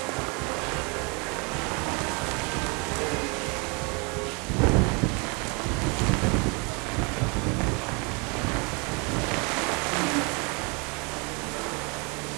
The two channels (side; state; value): left; quieter; 31.7 dB